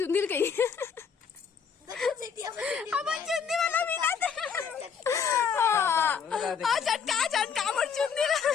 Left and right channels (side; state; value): right; quieter; 6.7 dB